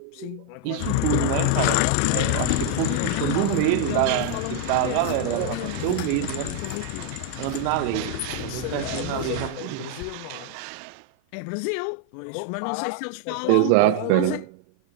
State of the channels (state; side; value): different; both; correlation 0.00